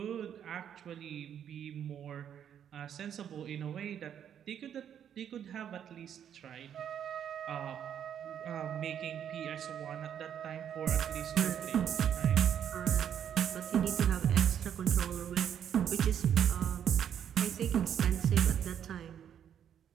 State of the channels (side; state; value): left; quieter; 9.2 dB